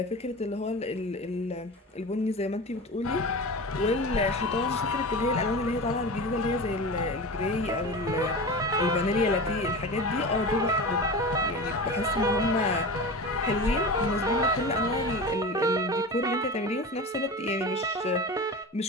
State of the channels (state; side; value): normal; both; correlation 0.29